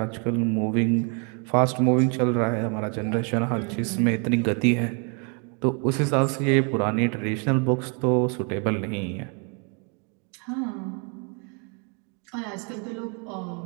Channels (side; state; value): left; quieter; 37.1 dB